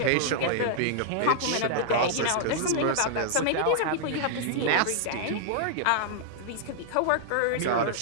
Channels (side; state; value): both; different; correlation -0.01